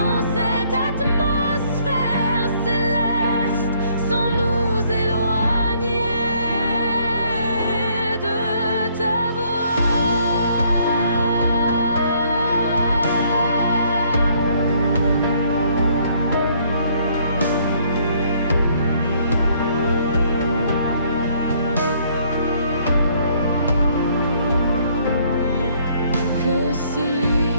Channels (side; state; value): both; inverted; correlation -0.64